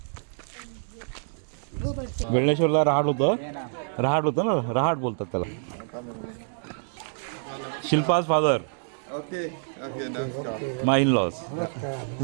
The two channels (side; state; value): left; silent; 59 dB below the other